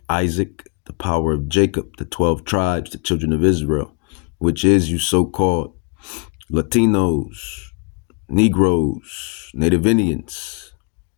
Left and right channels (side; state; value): right; quieter; 34.1 dB